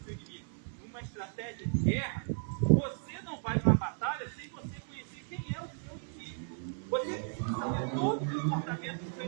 o inimigo. Uma estratégia de guerra, você não vai numa batalha sem você conhecer quem é o seu inimigo. Você precisa saber todo o comportamento do seu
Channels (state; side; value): silent; left; 55 dB below the other